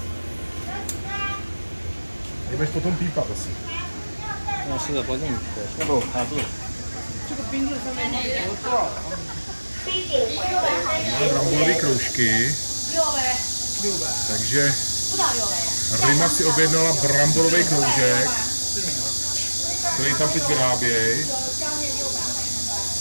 Jdeš potom pípat asi. No, si to podím, nebo chápu. Máme bramborové kroužky. Takže Rima si objednala bramborový kroužek, který tam teď vyrábějí.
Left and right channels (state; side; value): inverted; both; correlation -1.00